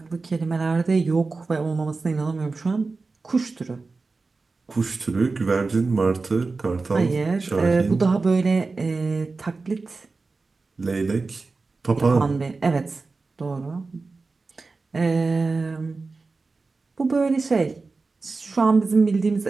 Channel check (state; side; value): quieter; left; 3.9 dB